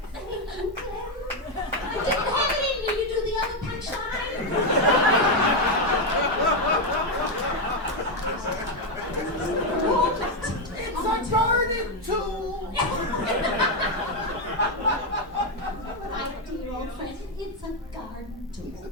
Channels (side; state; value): both; normal; correlation 0.04